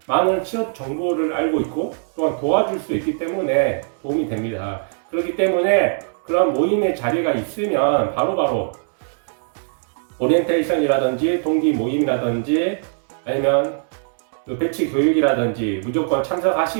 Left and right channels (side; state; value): left; silent; digital silence